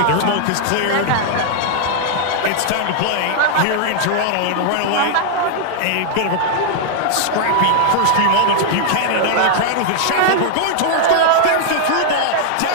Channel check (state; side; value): different; both; correlation -0.01